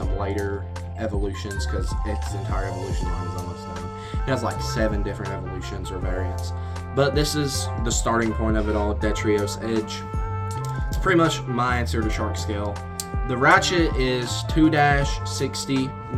later evolutions, because its entire evolution line is almost done. It has like 7 different evolutions or variants. But this is the starting point of it all, Detrios Edge. It's pretty much my answer to shark scale. The ratchet is 2-60.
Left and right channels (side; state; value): both; identical; correlation 1.00